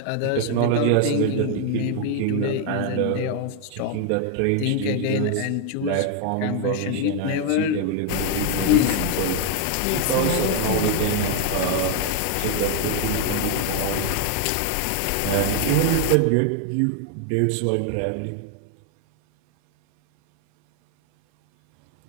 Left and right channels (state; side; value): different; both; correlation 0.01